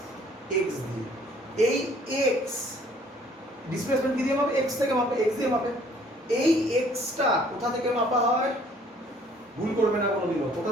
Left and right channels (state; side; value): normal; both; correlation 0.58